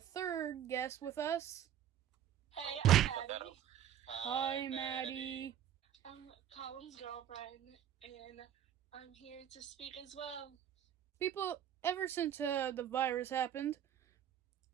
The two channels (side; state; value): left; quieter; 10.3 dB